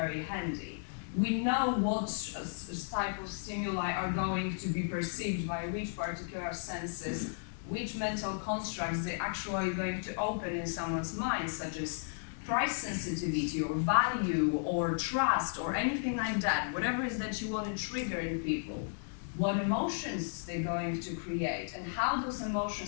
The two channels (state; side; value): silent; right; digital silence